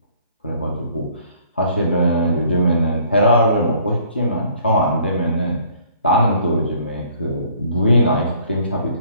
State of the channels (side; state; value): both; inverted; correlation -0.59